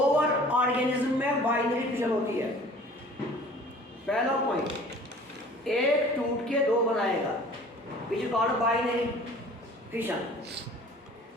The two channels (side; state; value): both; normal; correlation 0.48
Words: ऑर्गेनिज्म में बाइनरी फिशन होती है। पहला पॉइंट, एक टूट के दो बनाएगा, which is called binary fission।